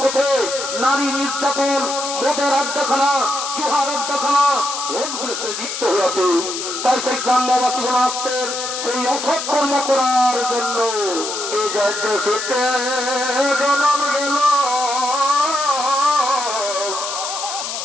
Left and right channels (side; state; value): left; noise; hiss, 5 dB below the sound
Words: পথে নারী নির্যাতন, মদের আড্ডাখানা, জুহার আড্ডাখানা ভোটগুলো সে লিপ্ত হয়ে আছে। তাই সেই গ্রাম্যবাসীগণ আসছেন সেই অসৎ কর্ম করার জন্য। এই দেশে জন্ম গেল